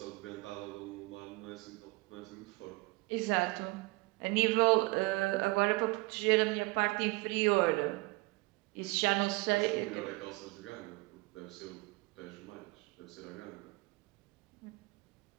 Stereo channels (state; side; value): quieter; left; 24.5 dB